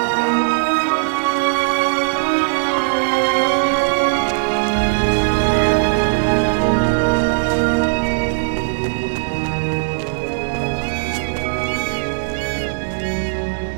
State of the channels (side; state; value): left; silent; 67 dB below the other